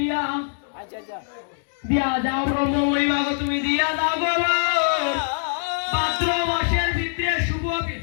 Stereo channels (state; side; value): silent; right; digital silence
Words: আচ্ছা আচ্ছা দিয়া যাও ব্রহ্মময়ী বাবা তুমি দিয়া দাও বাবা ভাদ্র মাসের ভিতরে শুভ